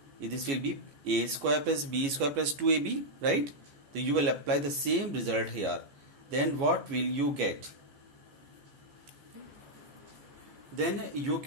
This will be A square plus B square plus 2AB, right? So you will apply the same result here. Then what will you get? Then you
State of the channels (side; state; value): left; late; 14 ms